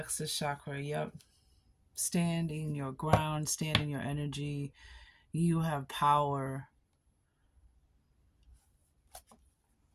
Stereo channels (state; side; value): identical; both; correlation 1.00